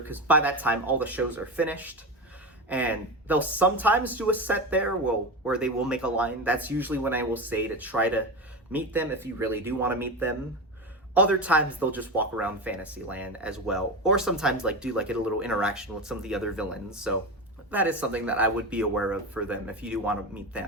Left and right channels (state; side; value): normal; both; correlation 0.21